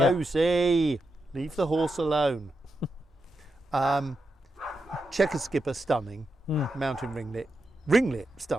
leave the horse alone. Checkered skipper, stunning. Mountain ringlet,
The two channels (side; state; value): both; normal; correlation 0.86